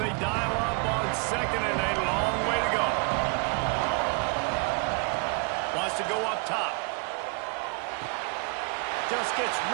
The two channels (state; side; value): quieter; left; 35.3 dB